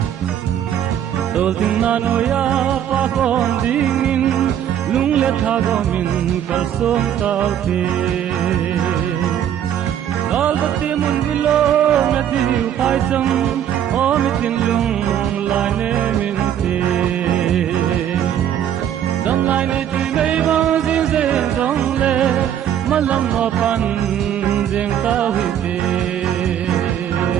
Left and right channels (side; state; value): left; quieter; 10.0 dB